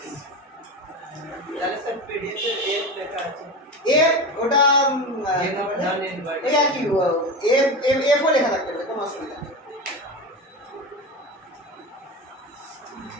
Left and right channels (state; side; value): normal; both; correlation 0.24